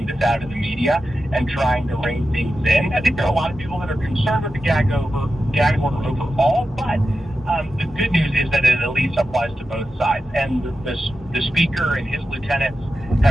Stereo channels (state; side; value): normal; both; correlation 0.91